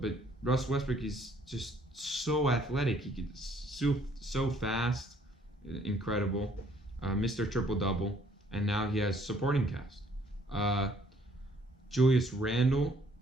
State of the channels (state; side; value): normal; both; correlation 0.63